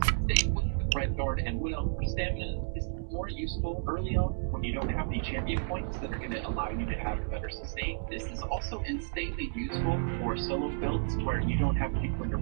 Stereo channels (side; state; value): left; silent; digital silence